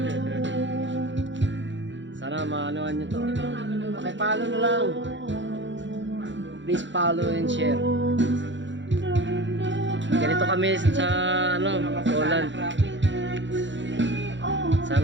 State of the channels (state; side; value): late; left; 0.54 ms